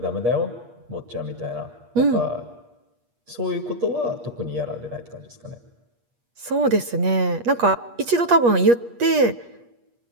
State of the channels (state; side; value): late; left; 8.4 ms